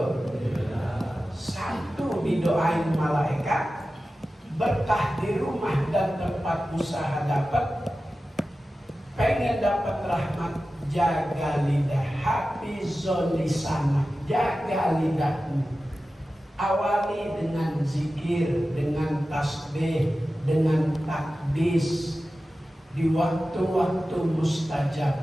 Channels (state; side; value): normal; both; correlation 0.94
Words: Satu didoain malaikat, berkah di rumah dan tempat usaha dapat. Pengen dapat rahmat, jaga lidah, hafizul lisan, jaga lidahmu. Awali dengan zikir, dengan tasbih, dengan takbis di waktu-waktu